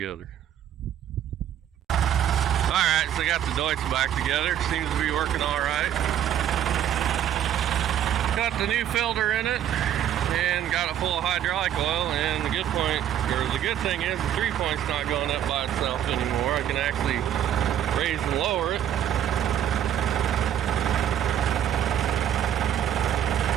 Alright, so I got the DEUTZ back together. Seems to be working alright. Got the new filter in it and got it full of hydraulic oil, and the good thing is the 3-point's not going up by itself anymore. I can actually raise and lower it.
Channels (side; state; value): left; quieter; 10.4 dB